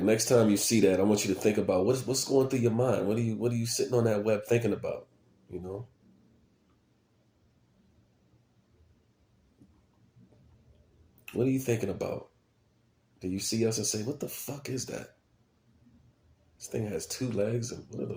next time you see that, I want you to think about what's going through your mind. What are you sitting on that web thinking about? You know? What are you thinking about? Do you see us and say, what the fuck is that? This thing has two legs and what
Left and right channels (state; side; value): identical; both; correlation 1.00